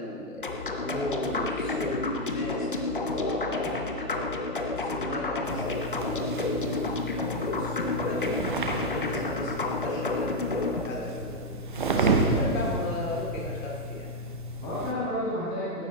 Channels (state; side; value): normal; both; correlation 0.02